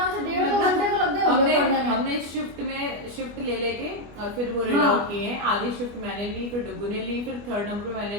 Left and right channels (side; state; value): left; late; 25 ms